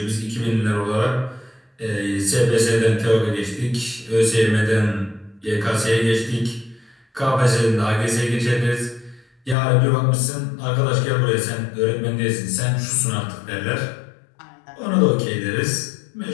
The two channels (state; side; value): drops out; right; at 9.6 s